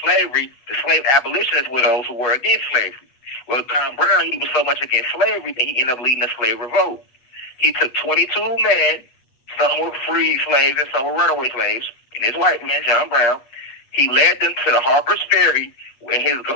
slavery, the slave abolitionists were those who were against slavery. Well, John Brown, he was so much against slavery that he ended up leading a slave revolt. He took 22 men. Some were free slaves and some were runaway slaves. And this white man, John Brown, he led them to the Harper's Ferry, where his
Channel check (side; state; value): right; late; 8.4 ms